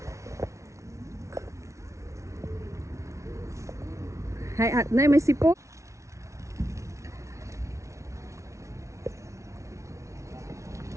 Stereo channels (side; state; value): left; late; 0.14 ms